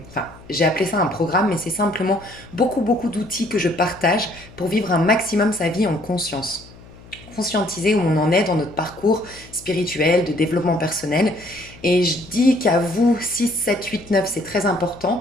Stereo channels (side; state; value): left; noise; hum, 21 dB below the sound